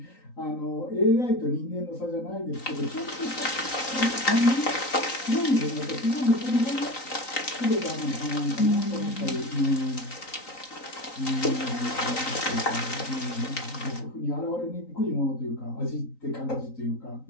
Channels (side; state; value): right; late; 3.9 ms